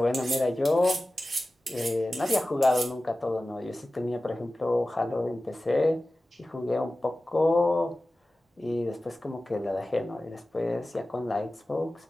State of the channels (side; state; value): both; normal; correlation 0.96